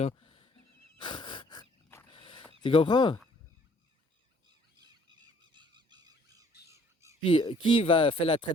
Tu comprends? Puis, qui va faire la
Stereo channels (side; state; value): both; normal; correlation 0.59